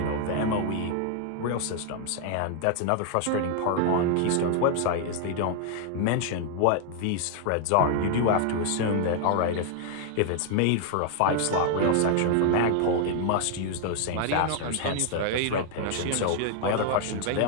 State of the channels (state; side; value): different; both; correlation 0.00